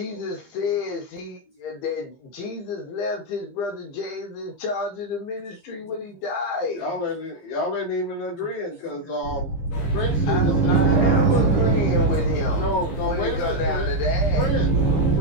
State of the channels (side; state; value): right; late; 15 ms